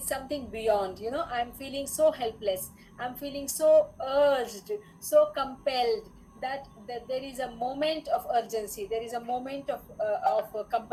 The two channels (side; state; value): both; identical; correlation 1.00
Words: something beyond. You know, I'm feeling so helpless. I'm feeling so urged, so compelled that there is a moment of urgency. There is a moment of